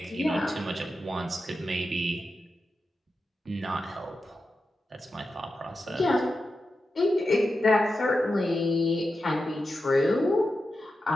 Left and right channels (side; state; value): both; normal; correlation 0.90